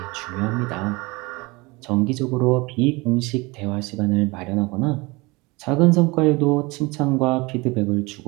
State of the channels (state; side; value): quieter; left; 24.5 dB